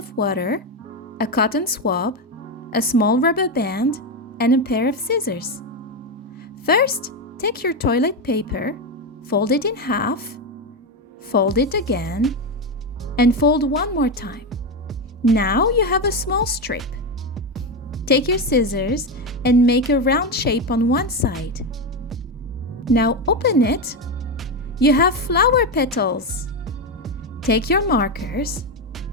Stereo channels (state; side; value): normal; both; correlation 0.11